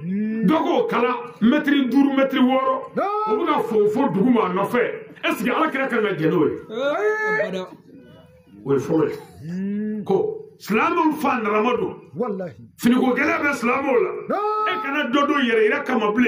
dɔ k'o kala mɛtiri 5 mɛtiri 6 o bɛ ka fɔ dugu ma a nɔfɛ est ce que ala kira kan ka jɛn n'o ye o ye fɔlɔ ye ko silamɛw fa narama don finiko gɛlɛya bɛ silamɛw la e kana dɔ dɔ yɛrɛ yɛrɛ kama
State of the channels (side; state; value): both; identical; correlation 1.00